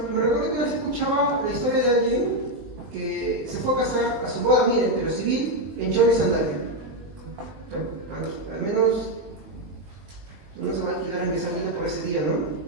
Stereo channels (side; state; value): left; late; 19 ms